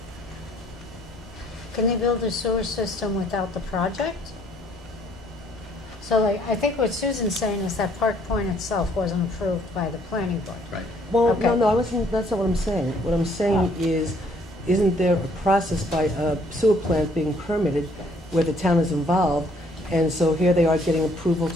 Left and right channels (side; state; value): both; normal; correlation 0.64